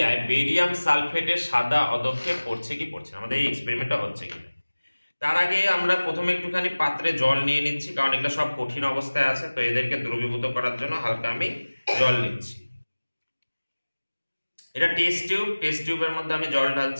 বেরিয়াম সালফেটের সাদা অধক্ষেপ পড়ছে কি পড়ছে না, আমাদের এই এক্সপেরিমেন্টটা হচ্ছে কিনা। তার আগে আমরা প্রথমে একটুখানি পাত্রে জল নিয়ে নিচ্ছি, কারণ এগুলো সব কঠিন অবস্থায় আছে, তো এদেরকে দ্রবীভূত করার জন্য হালকা আমি জল নিচ্ছি। এটা টেস্ট টিউবের মধ্যে আমি জল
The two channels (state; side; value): inverted; both; correlation -1.00